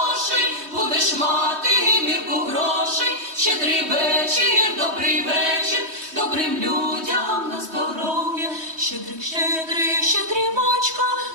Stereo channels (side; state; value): left; late; 3.2 ms